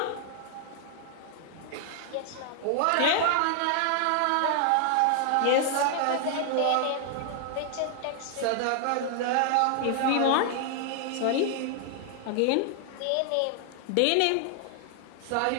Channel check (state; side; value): different; both; correlation 0.00